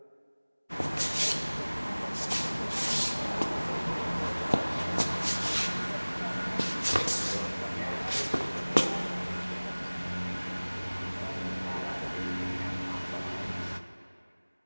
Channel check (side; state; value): both; inverted; correlation -1.00